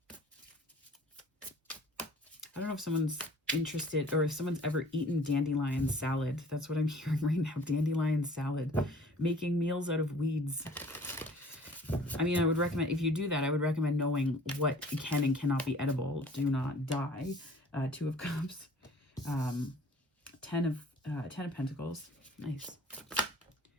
I don't know if someone's interested or if someone's ever eaten dandelion salad. That's what I'm hearing right now. Dandelion salad. Making meals out of weeds. I mean, I would recommend, if you do that, I would recommend knowing what can and cannot be edible. Do not die. 2 of Cups. 10 of Pentacles. Nice.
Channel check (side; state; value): both; normal; correlation 0.51